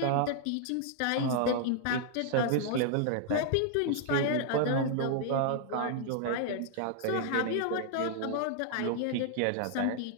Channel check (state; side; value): different; both; correlation 0.00